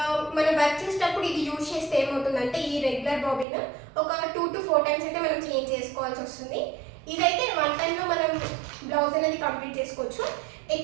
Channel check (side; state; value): left; drops out; at 3.5 s